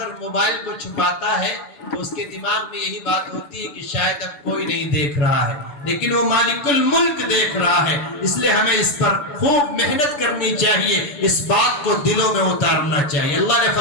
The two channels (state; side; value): late; right; 7.0 ms